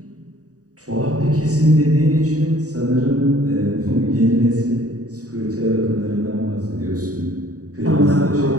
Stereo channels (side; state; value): left; late; 0.66 ms